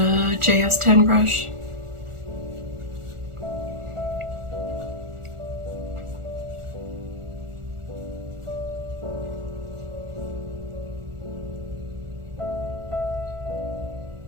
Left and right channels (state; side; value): late; left; 1.4 ms